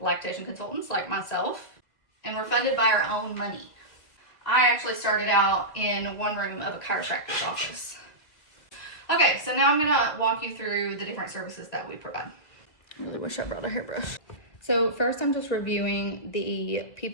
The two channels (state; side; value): late; right; 1.8 ms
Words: lactation consultants like myself, and we're funded by our own money. I actually started out in one room of a chiropractor's office. Okay, so now I'm gonna walk you through the different services that we provide. I really wish I brought a hairbrush. So first I'm just reviewing the